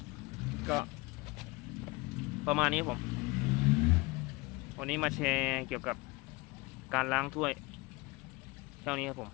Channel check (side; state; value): right; quieter; 23.4 dB